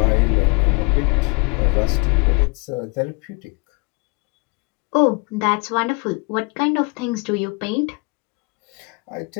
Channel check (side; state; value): right; quieter; 30.5 dB